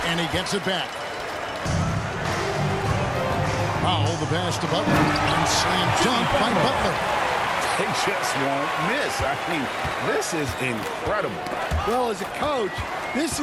And he gets it back. Powell, the pass to Butler, and slam dunk by Butler. They just won't miss. I mean, this is incredible. Well, as a coach, this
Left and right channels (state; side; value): identical; both; correlation 1.00